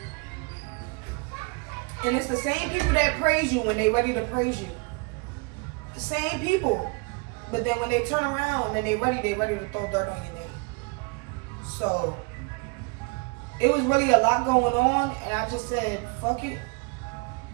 And it's the same people that praise you when they ready to praise you. The same people. But then when they turn around and they ready to throw dirt on your name. So it was really a lot going on, and I just said, fuck it.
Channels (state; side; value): quieter; left; 30.3 dB